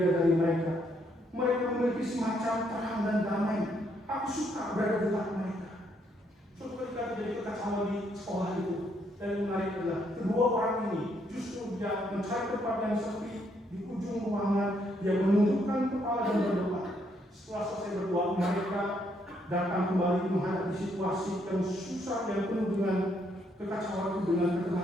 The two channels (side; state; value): both; normal; correlation 0.73